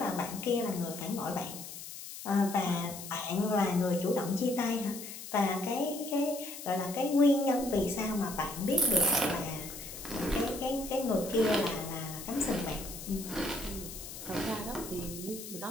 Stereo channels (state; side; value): noise; left; hiss, 11 dB below the sound